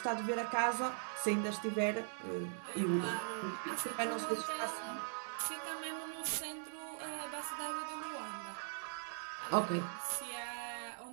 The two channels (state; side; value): silent; left; digital silence